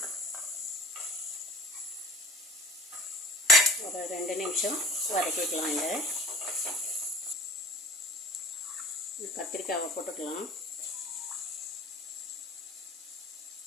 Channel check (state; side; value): normal; both; correlation 0.42